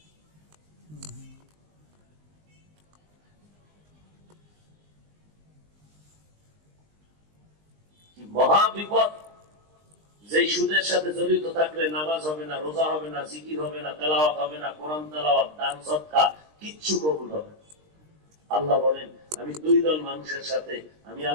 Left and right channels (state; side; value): late; left; 20 ms